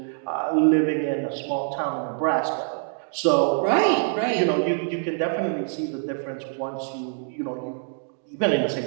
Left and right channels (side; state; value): left; silent; 62 dB below the other